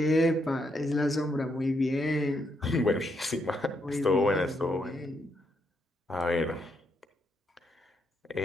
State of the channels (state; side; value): normal; both; correlation 0.78